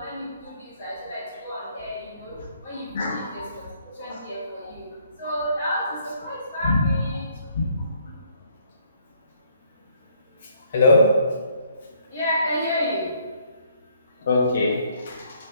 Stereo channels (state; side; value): inverted; both; correlation -0.65